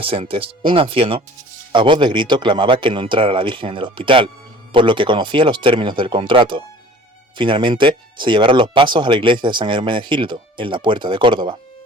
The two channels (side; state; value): both; normal; correlation 0.47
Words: un anciano, a voz de grito clamaba que no entrara la Virgen en el hospital, por lo que conocía los términos del contrato. Finalmente, se llevaron los pasos a la iglesia de San Hermenegildo, en la Puerta de Córdoba.